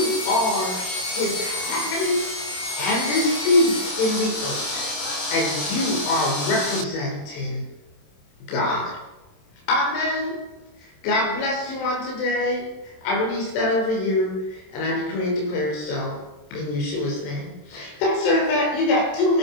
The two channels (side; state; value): right; late; 27 ms